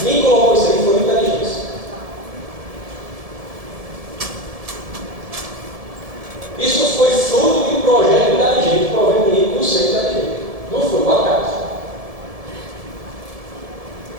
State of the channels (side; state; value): left; late; 1.7 ms